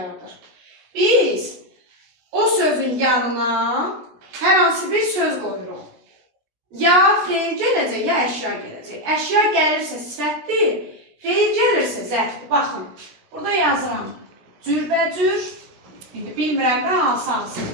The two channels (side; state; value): left; late; 17 ms